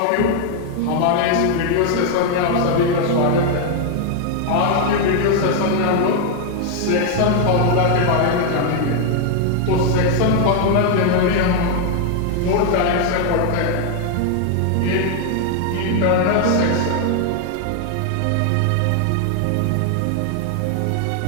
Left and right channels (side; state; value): both; different; correlation 0.00